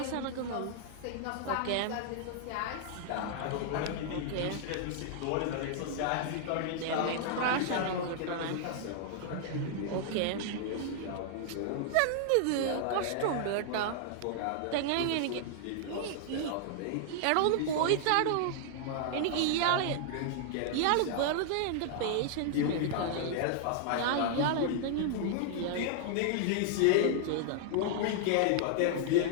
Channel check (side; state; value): both; different; correlation -0.01